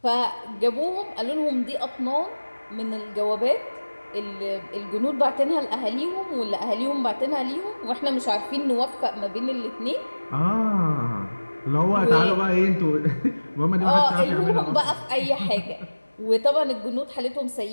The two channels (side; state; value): both; inverted; correlation -1.00